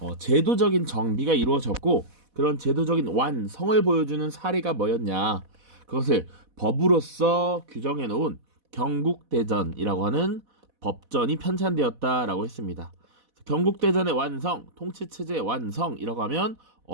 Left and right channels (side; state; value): left; late; 4.1 ms